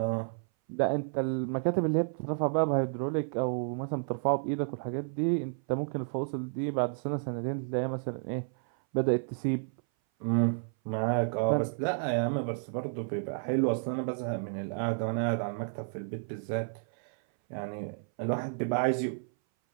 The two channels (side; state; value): left; silent; 57 dB below the other